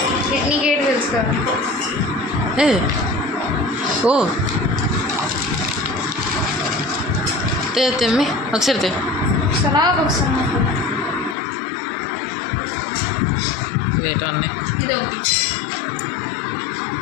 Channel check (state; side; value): drops out; right; at 11.4 s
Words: నీకేంటి తెలుసు కదా? ఓ తెమ్మి ఒకసారి wait అన్నీ ఇది ఒకటి